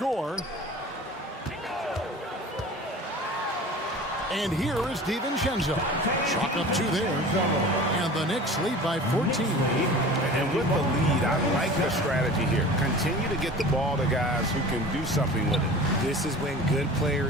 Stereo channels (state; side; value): normal; both; correlation 0.39